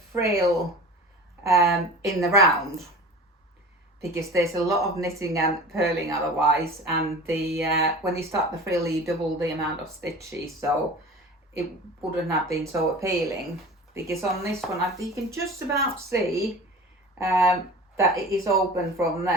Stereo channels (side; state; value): both; normal; correlation 0.37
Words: frill in the round, because there's a lot of knitting and purling otherwise, and the when you start the frill you double the amount of stitches, so it wouldn't have been so appealing. Because on this one you can just about see that it is open from